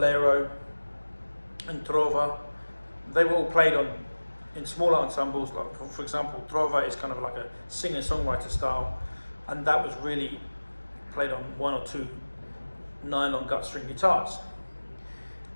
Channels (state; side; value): inverted; both; correlation -1.00